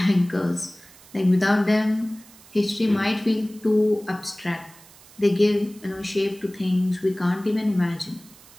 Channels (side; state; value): right; noise; hiss, 23 dB below the sound